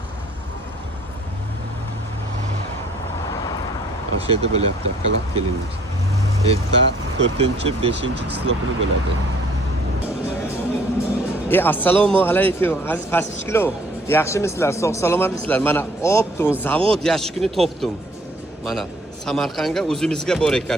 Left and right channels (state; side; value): normal; both; correlation 0.59